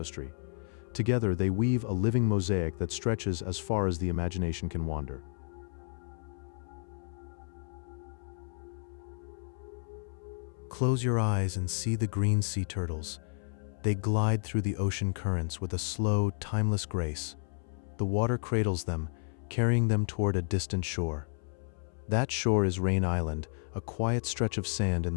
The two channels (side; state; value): right; silent; 55 dB below the other